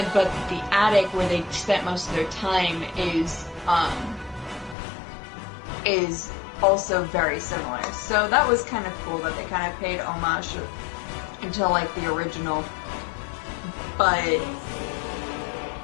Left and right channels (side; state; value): right; drops out; at 4.8 s